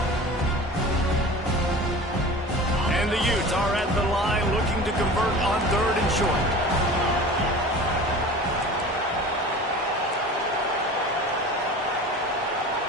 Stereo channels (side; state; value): both; normal; correlation 0.38